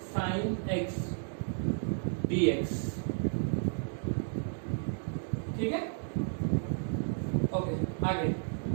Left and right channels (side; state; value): left; silent; digital silence